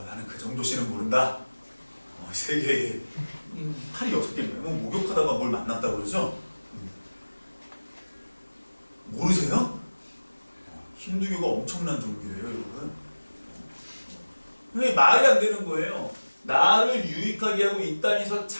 나는 그 정도 신은 모른다. 세계에 팔이 6개인가요? 목욕하다가 뭘 만났다고 그러죠? 모르세요? 힌두교가 엄청난 종교예요, 여러분. 말이 안 되는 거예요. 나를 유익하게 하고 이 땅에서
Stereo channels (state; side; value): inverted; both; correlation -1.00